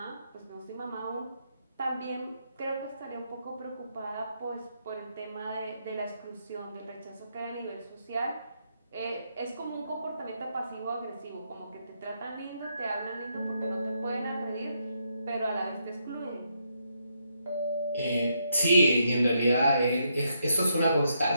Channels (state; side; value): inverted; both; correlation -0.77